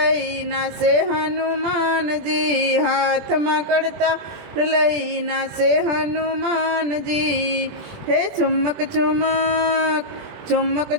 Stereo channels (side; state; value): left; late; 21 ms